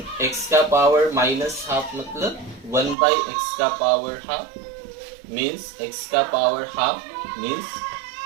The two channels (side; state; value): left; drops out; at 3.0 s